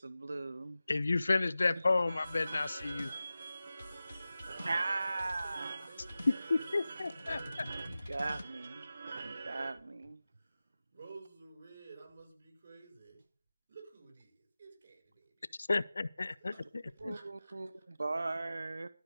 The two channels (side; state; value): both; inverted; correlation -0.95